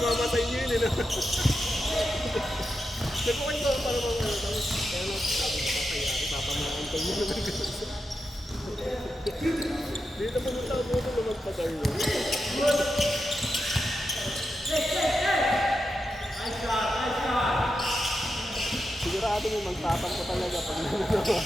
sa inyo yun eh. Nagpukay ko para mga ano. Tapos, kaya lang, sabi ko papayari, papamahin ko muna ng ganun. Dito pumunta ako muna na magpag-arlo. Sigurado mo magtapang ko talaga pag nanagawa.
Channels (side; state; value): both; normal; correlation 0.88